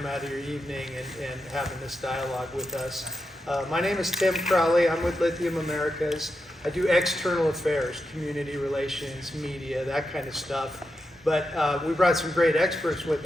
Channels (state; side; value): normal; both; correlation 0.87